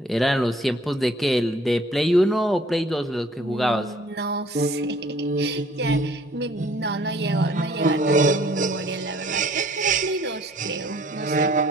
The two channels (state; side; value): normal; both; correlation 0.57